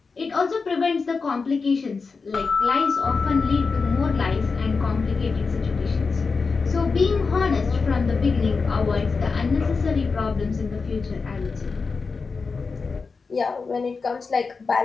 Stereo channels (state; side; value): quieter; right; 4.6 dB